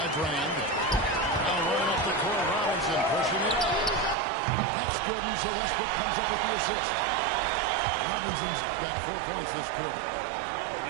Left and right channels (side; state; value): left; drops out; at 4.2 s